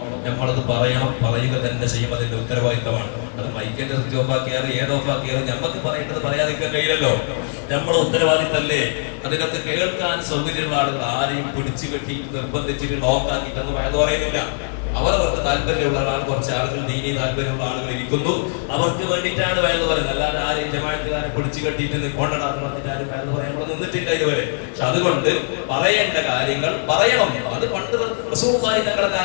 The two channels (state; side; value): silent; right; 64 dB below the other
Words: പറയണം, പറയുക തന്നെ ചെയ്യും. അതിന്റെ ഉത്തരവാദിത്തമാണ്. അത് മൈക്കിന്റെ സ്വിച്ച് ഓഫാക്കിയാലും ഏതോഫാക്കിയാലും നമുക്ക് പറയേണ്ടത് പറയാതിരിക്കാൻ കഴിയില്ലല്ലോ. നമ്മൾ ഉത്തരവാദിത്തല്ലേ. അതിനൊക്കെ കേൾക്കാൻ സൗകര്യമുള്ള ആളുകൾ ആരെയും പിടിച്ചു കെട്ടി നിർബന്ധിച്ചിട്ട് ലോക്കാക്കിയിട്ടൊന്നും വയത് പറയുന്നില്ല. അവർക്ക് താല്പര്യമുള്ള ആൾ, കുറച്ച് ആളുകൾ ദീനി താല്പര്യമുള്ള ആളുകൾ ഇരിക്കുന്നു, അവർക്ക് വേണ്ടിയിട്ടാണ് വയത് പറയുന്നത്. അല്ലാതെ ആരെയും ജമാഅത്തുകാരെ പിടിച്ചു കെട്ടിയിട്ട് കൊണ്ടാണെന്ന് പറഞ്ഞിട്ട് ആരും വയത് പറയാൻ ഇവിടെ നിന്നിട്ടില്ല ഇതുവരെ. പക്ഷെ അതുകൊണ്ട് പറയേണ്ട കാര്യങ്ങൾ പറയണം. അത് പണ്ട് റസൂലുള്ളാഹി തങ്ങളുടെ